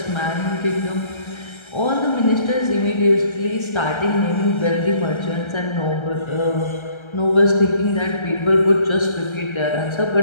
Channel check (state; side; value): late; right; 1.3 ms